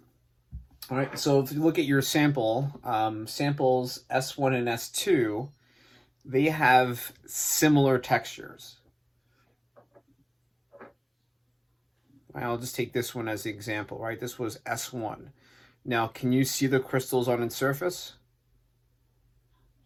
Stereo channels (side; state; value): both; identical; correlation 1.00